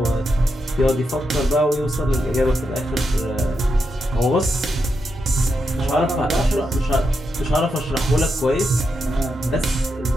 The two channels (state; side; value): normal; both; correlation 0.84